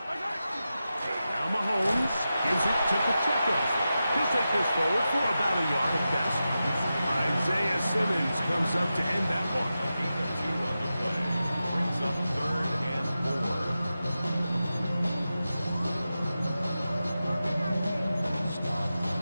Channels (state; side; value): inverted; both; correlation -0.92